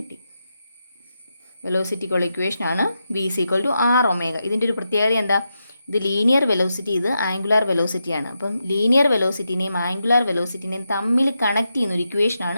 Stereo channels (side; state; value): both; inverted; correlation -0.86